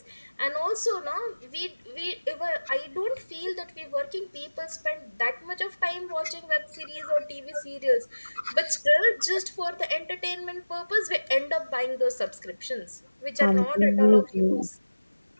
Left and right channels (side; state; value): both; inverted; correlation -1.00